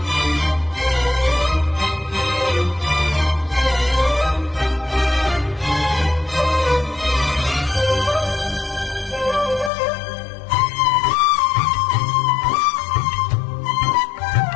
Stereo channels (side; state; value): right; drops out; at 9.7 s